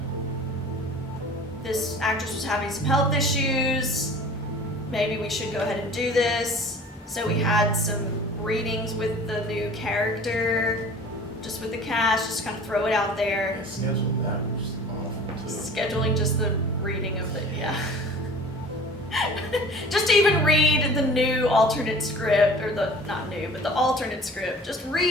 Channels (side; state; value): both; normal; correlation 0.44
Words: this actress was having some health issues. Maybe we should go ahead and do this. So we had some readings with the new character, just with the cast, just kind of throw it out there. Scheduling that was awful too. Scheduling just the reading of the, yeah. Just to even read the new alternate script, or not new, but the alternate script, just